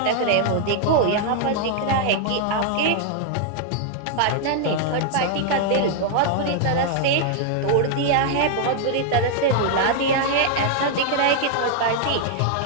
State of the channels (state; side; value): different; both; correlation -0.01